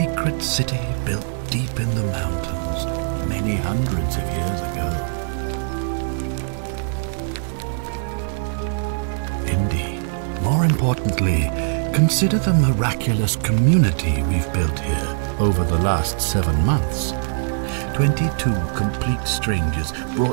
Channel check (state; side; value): silent; left; digital silence